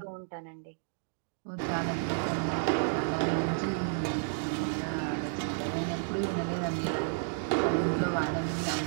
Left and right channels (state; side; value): silent; left; digital silence